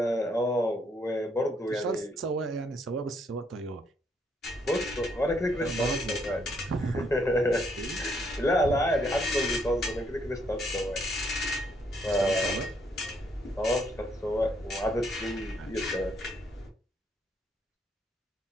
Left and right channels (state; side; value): normal; both; correlation 0.71